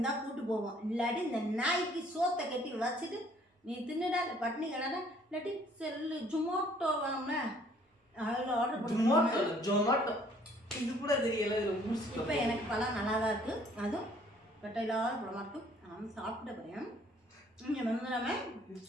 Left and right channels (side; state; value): both; normal; correlation 0.60